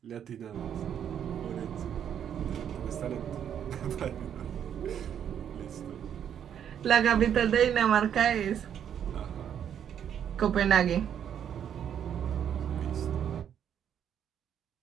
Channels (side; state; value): left; quieter; 9.0 dB